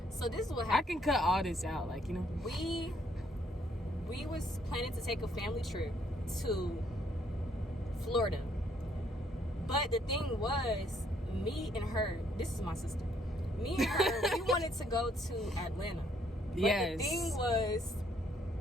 so this is what I happened. can cut all this out, like, you know. We was planning to take a family trip to Florida. But the thing was, me and her, this is my sister. Me and her, we wanted to go to Atlanta. But Yes. the thing was,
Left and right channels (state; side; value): normal; both; correlation 0.68